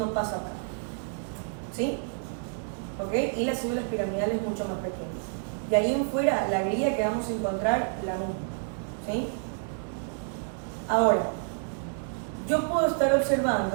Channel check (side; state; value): left; silent; digital silence